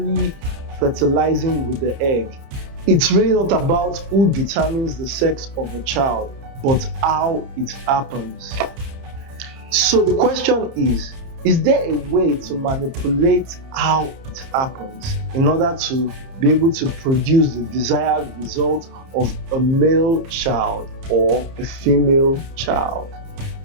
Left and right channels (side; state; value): left; late; 30 ms